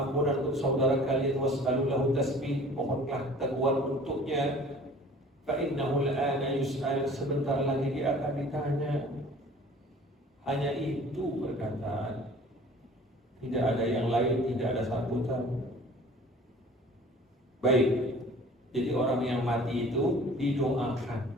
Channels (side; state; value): both; normal; correlation 0.47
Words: untuk saudara kalian, was'alu lahu tasbih, mohonlah teguhan untuknya. Fa innahu al-ana yus'al, sebentar lagi dia akan ditanya. Hanya itu perkataan. Tidak ada yang lain, tidak ada sambutan. Baik, jadi orang yang mati itu didoakan.